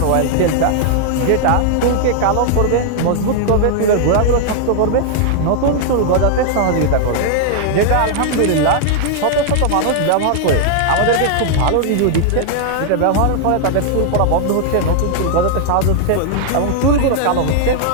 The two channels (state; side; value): different; both; correlation 0.00